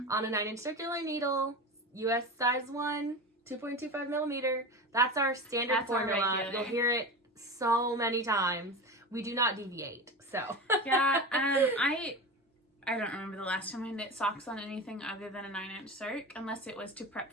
on a 9-inch circular needle, US size 1, 2.25 millimeter. That's our standard That's our formula. regular. You'll hear it so many times. We do not deviate, so. Yeah, I don't remember the last time I knit socks on anything other than a 9-inch circ, unless it was to prep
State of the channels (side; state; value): both; normal; correlation 0.26